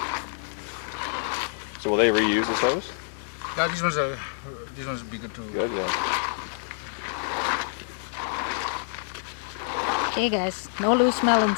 So will they reuse this hose? Yeah, these ones would be good too. Good, yeah. Okay guys, no loose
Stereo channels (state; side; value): silent; right; digital silence